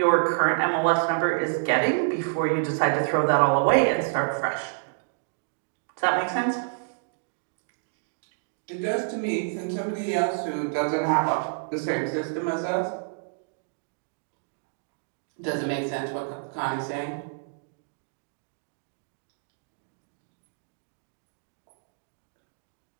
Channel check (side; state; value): left; silent; digital silence